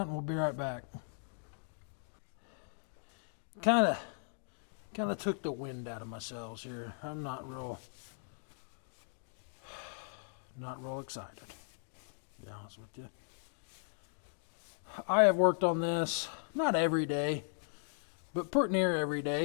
and we'll be right back. Kind of took the wind out of my sails here. I'm not real excited, to be honest with you. I have worked on this, not every day, but pretty near every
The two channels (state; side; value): silent; right; digital silence